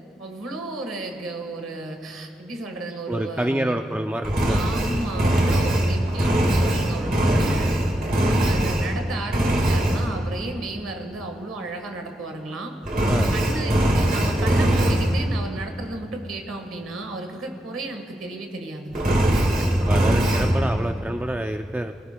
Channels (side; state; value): both; normal; correlation 0.85